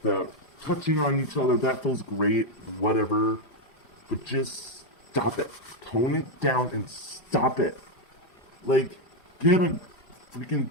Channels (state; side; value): late; right; 5.0 ms